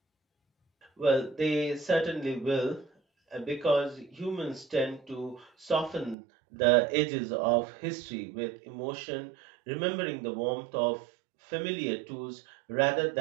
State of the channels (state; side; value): drops out; left; at 6.2 s